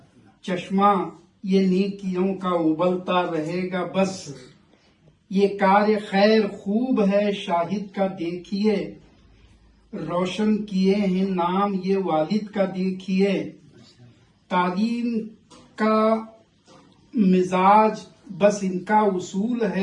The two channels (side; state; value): both; identical; correlation 1.00